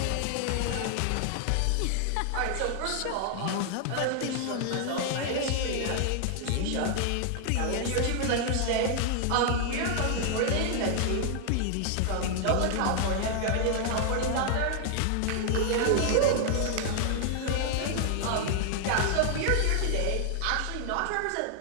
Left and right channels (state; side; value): different; both; correlation 0.00